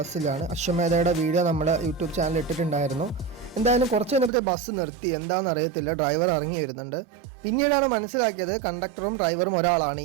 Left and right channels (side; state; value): left; drops out; at 4.3 s